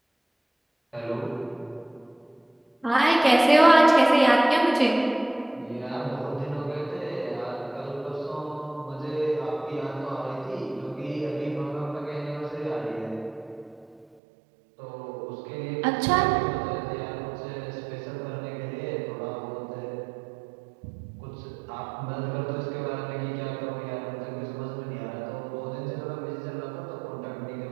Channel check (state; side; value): drops out; left; at 14.2 s